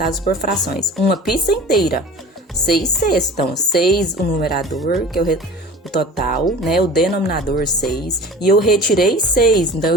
por frações. Uma pizza inteira, 6 sextos. Então, 6 o numerador, que é o total, né? O denominador 6. E eu retirei 6, então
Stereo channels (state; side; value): normal; both; correlation 0.40